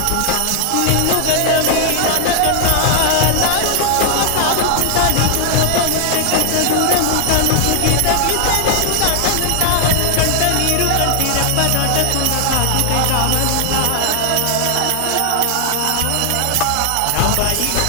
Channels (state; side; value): different; both; correlation 0.00